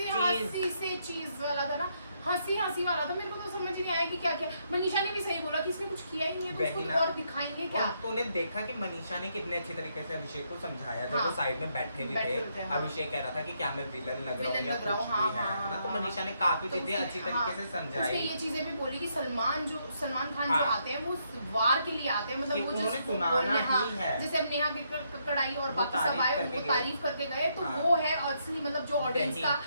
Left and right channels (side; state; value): both; inverted; correlation -0.76